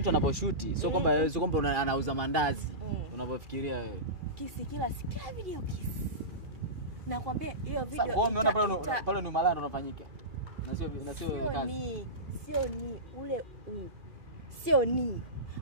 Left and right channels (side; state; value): left; late; 2.4 ms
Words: anaposhoot sio kwamba anauza mandazi. Unapofikiria wewe. Kisi kila video kisi. Nakwambia hiyo video. Sasa umeona pale ni malaya ndo unafanyika. Na sio kazi. Sio ni ule sio ni.